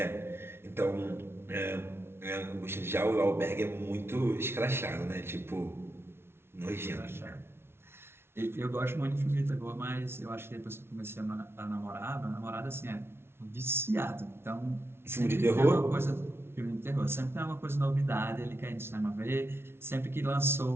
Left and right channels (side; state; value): left; late; 0.12 ms